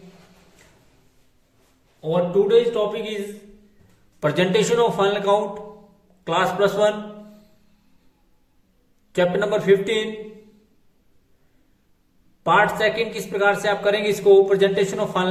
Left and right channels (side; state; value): both; identical; correlation 1.00